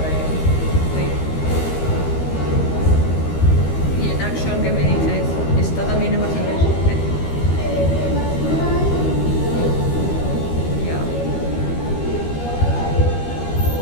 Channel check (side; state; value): right; late; 13 ms